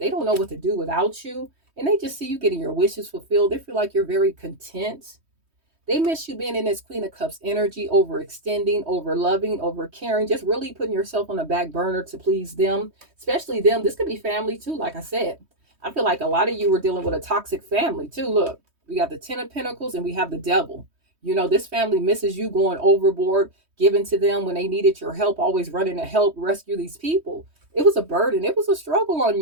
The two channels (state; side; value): late; left; 3.2 ms